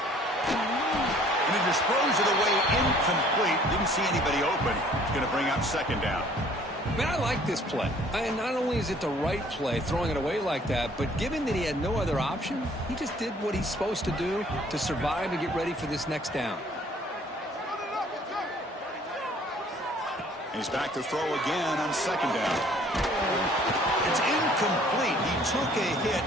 And he disposed of the way incomplete. Didn't see anybody open. It's going to bring up 2nd down. Man, I like this play. And not only is it the right play, throwing it away like that, but given that he had no other option, he just did what he's supposed to do to survive and get ready for this next down. And he's back to throw again on 2nd down. It's incomplete. He took a hit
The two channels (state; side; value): normal; both; correlation 0.56